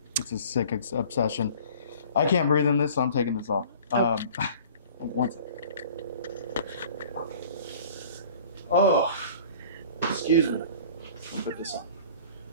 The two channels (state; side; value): inverted; both; correlation -0.46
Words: It's a sick obsession. I can't breathe in this, so I'm taking this off. One second. Oh, excuse me. I'll put this